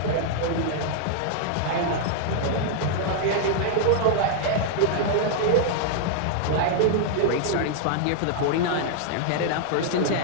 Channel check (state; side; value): different; both; correlation -0.01